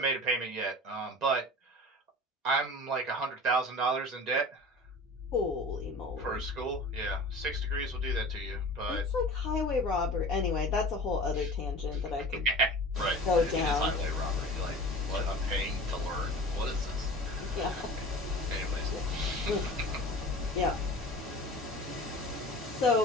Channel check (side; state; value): both; normal; correlation 0.39